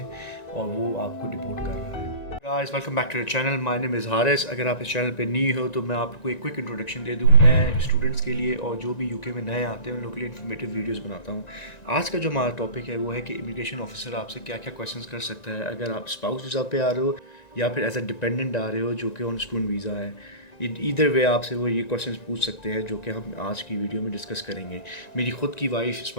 وہ آپ کو ڈپورٹ کر رہا ہے. Guys welcome back to the channel. My name is Haris. اگر آپ اس چینل پہ نیو ہو تو میں آپ کو ایک کوئک انٹروڈکشن دے دوں. میں اسٹوڈنٹس کے لیے اور جو بھی یو کے میں نئے آتے ہیں ان لوگوں کے لیے انفارمیٹیو ویڈیوز بناتا ہوں. آج کا جو ہمارا ٹاپک ہے وہ ہے کہ امیگریشن آفیسر آپ سے کیا کیا کویشچنس کر سکتا ہے اگر آپ اسپاؤس ویزا پہ آ رہے ہو یا پھر ایز اے ڈپینڈنٹ آ رہے ہو جو کہ آن اسٹوڈنٹ ویزا ہے. ایدر وے آپ سے وہ یہ کویشچنس پوچھ سکتے ہیں جو کہ ہم آج کی ویڈیو میں ڈسکس کریں گے. میری خود کی وائف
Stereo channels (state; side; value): late; right; 1.9 ms